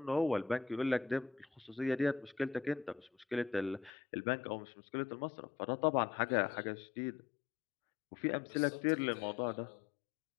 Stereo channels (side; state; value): right; drops out; at 3.9 s